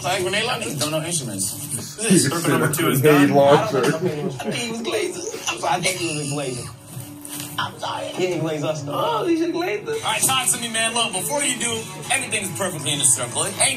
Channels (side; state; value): both; identical; correlation 1.00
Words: Like grenade launcher? Don't know instruments. Circle number 2 is Grenade done. launcher. I think he was glazing. I'm sorry, I think he was glazing. I'm sorry. He didn't glaze us though. Oh, he should glaze us. All right, talk to me, man. Look, before you do, everything's perfectly in the circle.